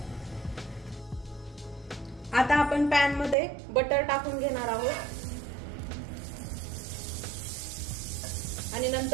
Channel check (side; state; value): left; drops out; at 3.4 s